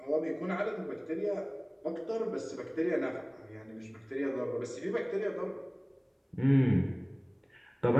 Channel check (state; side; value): identical; both; correlation 1.00